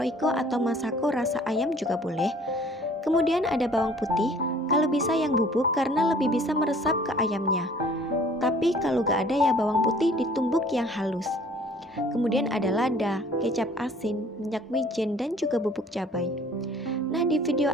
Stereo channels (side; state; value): both; normal; correlation 0.53